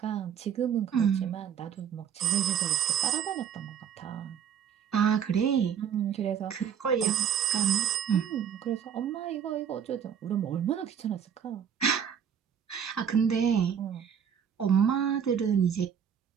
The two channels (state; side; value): quieter; left; 8.1 dB